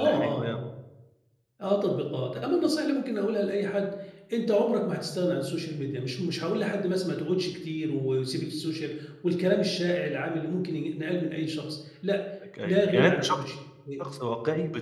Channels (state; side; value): identical; both; correlation 1.00